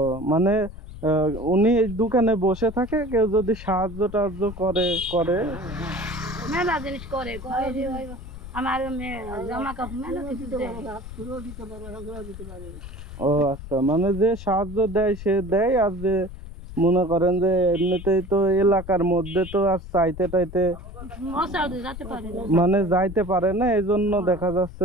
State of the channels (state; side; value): noise; left; rumble, 12 dB below the sound